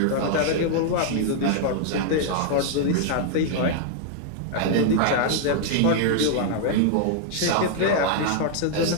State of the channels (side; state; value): both; different; correlation 0.00